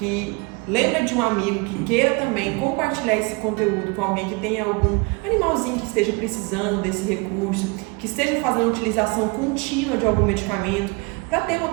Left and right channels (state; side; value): quieter; left; 27.9 dB